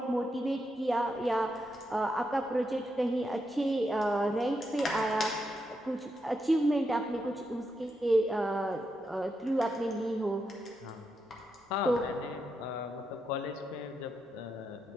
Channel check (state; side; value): normal; both; correlation 0.83